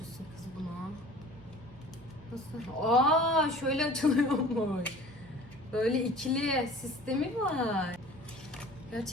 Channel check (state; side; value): noise; right; hum, 23 dB below the sound